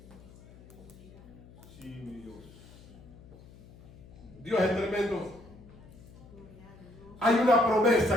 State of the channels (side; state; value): left; noise; hum, 21 dB below the sound